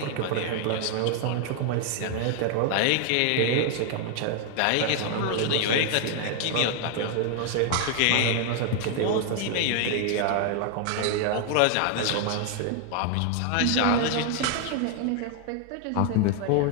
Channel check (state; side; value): different; both; correlation 0.00